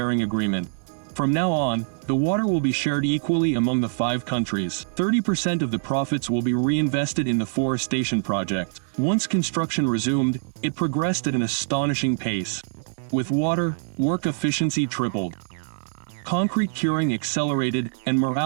Agreement. From now on, the water will be shared equally among the 5 countries. 30% of the profits will be reinvested in the forestation project. Once construction resumed, it progressed at an astonishing pace. With water, work efficiency tripled. Concrete curing accelerated, and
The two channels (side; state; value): left; silent; 62 dB below the other